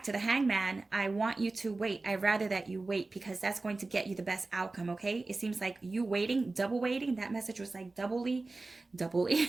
to the Hangman. I want you to wait. I'd rather that you wait, because that's going to get you the best outcome, okay? It seems like you waiting, double waiting. That message was like double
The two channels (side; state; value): left; quieter; 3.4 dB